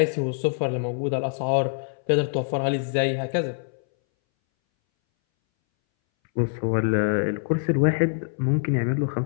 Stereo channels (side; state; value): right; silent; 61 dB below the other